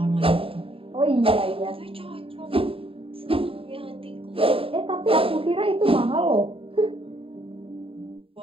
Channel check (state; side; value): late; left; 0.27 ms